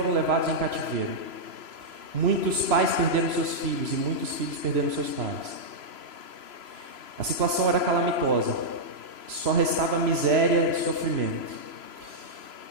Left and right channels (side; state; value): left; late; 3.0 ms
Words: levados em cativeiro. Muitos pais perderam seus filhos e muitos filhos perderam seus pais. A situação era calamitosa. Só restava miséria e sofrimento.